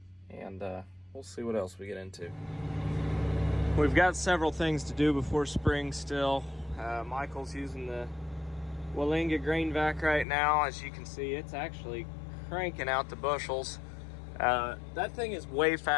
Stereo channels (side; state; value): right; drops out; at 10.2 s